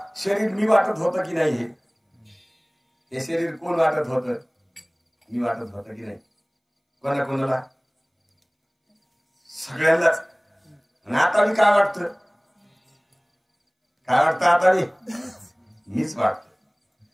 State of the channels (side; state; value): both; identical; correlation 1.00